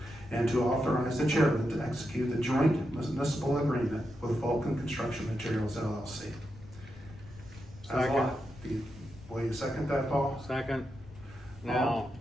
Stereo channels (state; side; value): noise; left; rumble, 18 dB below the sound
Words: And to authorize the chairman to execute the joint municipal agreement with Vulcan Construction Materials LLC. Second. Will you second that, Paul? second. Now,